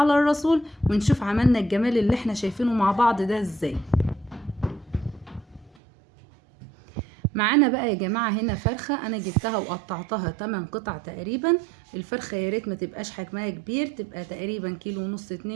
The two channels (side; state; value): left; drops out; at 5.7 s